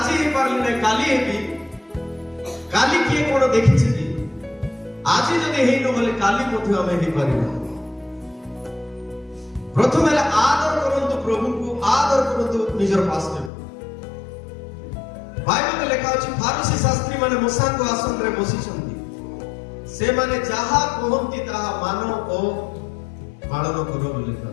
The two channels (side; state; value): right; drops out; at 13.5 s